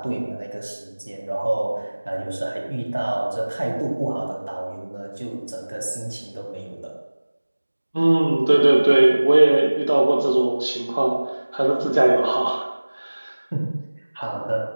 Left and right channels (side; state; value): both; inverted; correlation -1.00